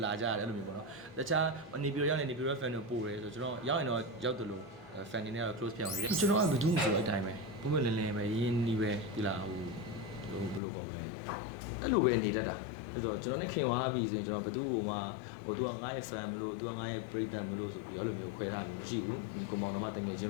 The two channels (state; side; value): drops out; right; at 10.6 s